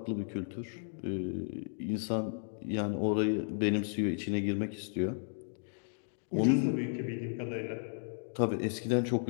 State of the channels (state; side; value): silent; right; digital silence